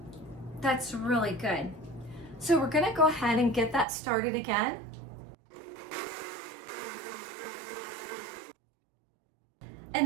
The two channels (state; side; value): drops out; left; at 3.9 s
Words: That's really good. So we're gonna go ahead and get that started again.